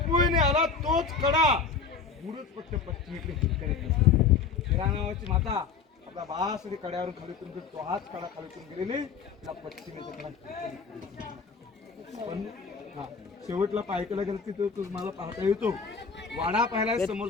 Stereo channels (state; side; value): quieter; right; 5.5 dB